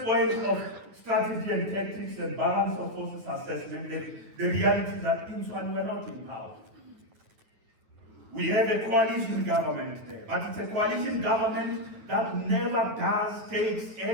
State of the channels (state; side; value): late; left; 9.4 ms